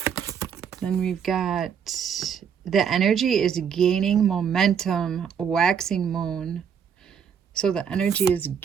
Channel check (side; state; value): left; quieter; 7.5 dB